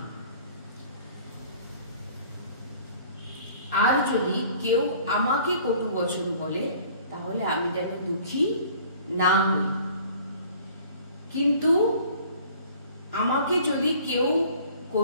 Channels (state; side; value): inverted; both; correlation -0.52